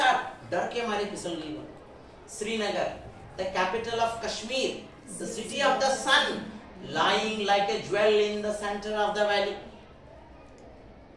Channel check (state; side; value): identical; both; correlation 1.00